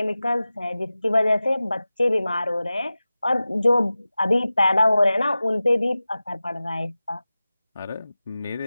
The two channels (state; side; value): inverted; both; correlation -0.96